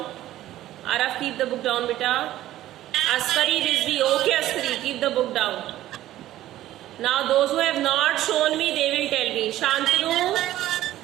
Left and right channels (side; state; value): left; quieter; 14.1 dB